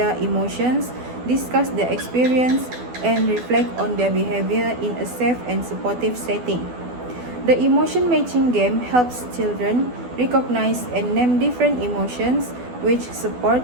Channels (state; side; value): late; left; 12 ms